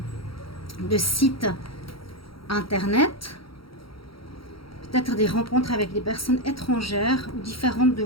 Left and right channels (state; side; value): late; right; 0.75 ms